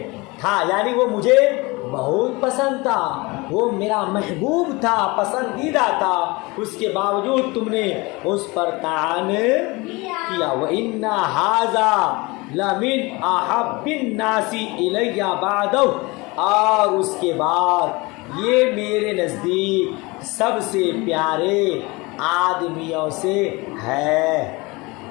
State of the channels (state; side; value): quieter; right; 24.5 dB